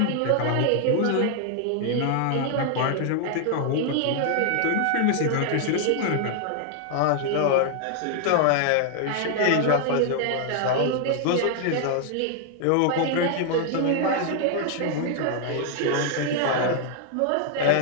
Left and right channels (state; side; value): different; both; correlation 0.00